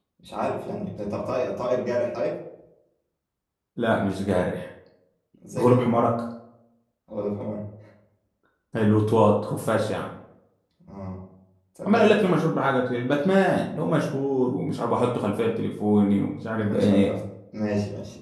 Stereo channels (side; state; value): both; identical; correlation 1.00